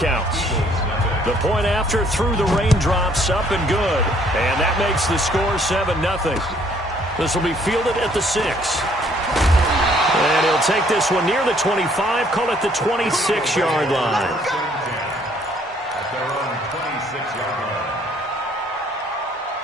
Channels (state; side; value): normal; both; correlation 0.63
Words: The point after through the raindrops, up and good. And that makes the score 7-0. This will be fielded at the 6. And he'll take this one near the 25, call it the 26-yard line. At their own 26-yard line.